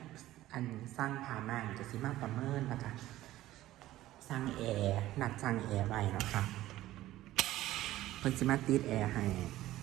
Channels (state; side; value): quieter; left; 15.2 dB